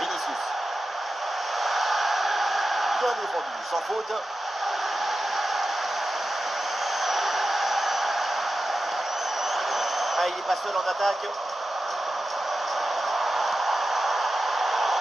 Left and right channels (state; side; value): normal; both; correlation 0.92